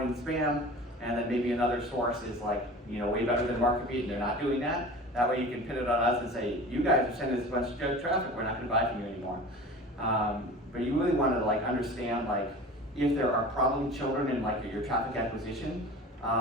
spam, and then maybe another source is like, way better than MarketBeat and they're not doing that. That way you can pin it on us and say, you guys are sending us a bunch of junk traffic, we're not going to buy from you anymore. But you really want to like understand like if there are problem children in like your traffic acquisition,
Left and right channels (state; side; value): normal; both; correlation 0.37